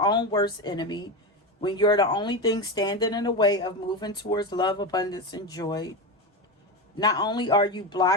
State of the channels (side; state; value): both; normal; correlation 0.18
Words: worst enemy, when you're the only thing standing in the way of moving towards love, abundance, and joy. Not only are you